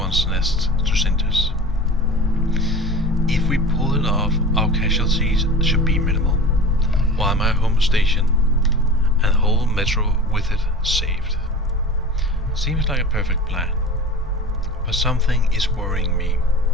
nests to cinders. If we pull it off, our casualties should be minimal, while my home station and the whole metro with it saved. Seems like a perfect plan, but something is worrying me.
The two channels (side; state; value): both; normal; correlation 0.35